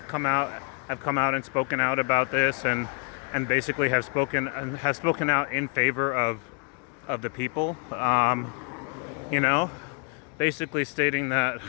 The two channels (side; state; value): right; quieter; 36.4 dB